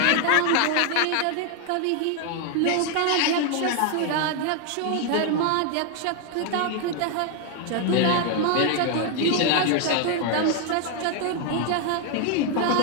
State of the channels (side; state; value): both; different; correlation 0.01